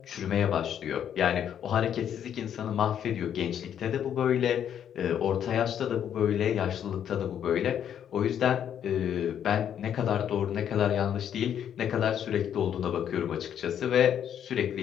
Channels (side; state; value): right; quieter; 9.3 dB